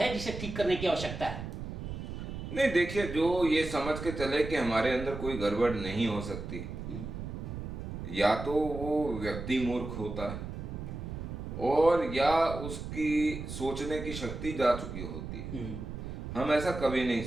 जिसे ठीक करने की आवश्यकता है? नहीं, देखिए, जो ये समझ के चले कि हमारे अंदर कोई गड़बड़ नहीं हो सकती, या तो वो व्यक्ति मूर्ख होता है और या उसकी सोचने की शक्ति जा चुकी होती है। हम ऐसा कभी नहीं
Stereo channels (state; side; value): noise; right; rumble, 7 dB below the sound